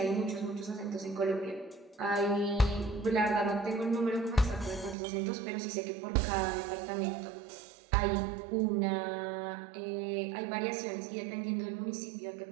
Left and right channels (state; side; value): drops out; left; at 5.0 s